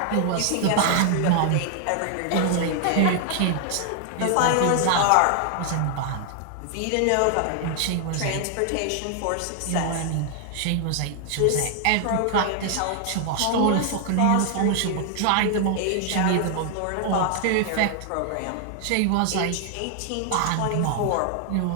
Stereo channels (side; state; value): both; different; correlation 0.00